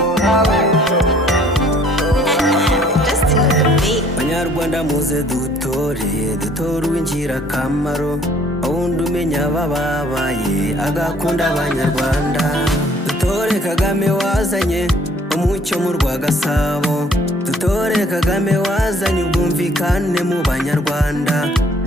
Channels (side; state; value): both; normal; correlation 0.59